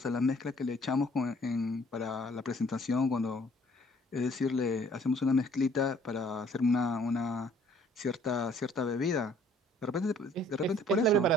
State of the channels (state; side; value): normal; both; correlation 0.58